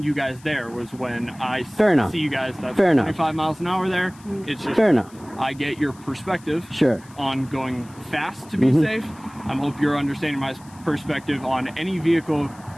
you guys there was when I Fair enough. see you guys that's Fair enough. 25 miles an hour there. It's just Fair enough. I get your perspective Sure. on going fast to be safe. I hope you're understanding my perspective on any vehicle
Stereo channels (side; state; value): left; noise; hiss, 25 dB below the sound